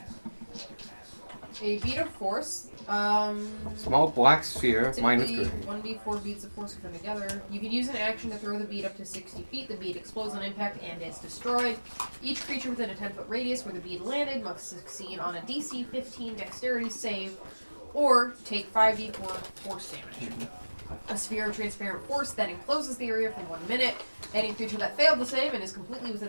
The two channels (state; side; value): inverted; both; correlation -1.00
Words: A bead of force. Small black sphere, minus Typically, gray. 1d4 beads of force are put together. You can use an action to throw the bead up to 60 feet. The bead explodes on impact and is destroyed. Each creature within a 10-foot radius where the bead landed must succeed on a DC 15 dexterity save or take 5d4 force damage. A sphere of transparent force then encloses the area for 1 minute. Any creature that failed the save and is completely